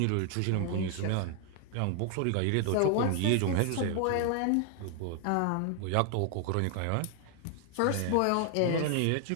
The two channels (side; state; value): both; different; correlation 0.00